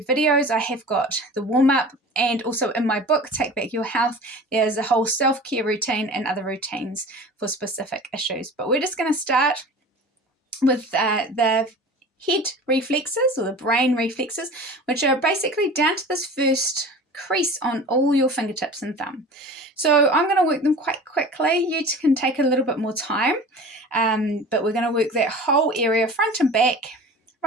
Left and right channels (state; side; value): normal; both; correlation 0.38